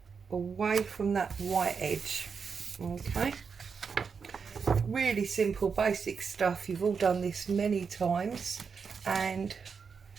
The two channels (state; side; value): quieter; left; 5.8 dB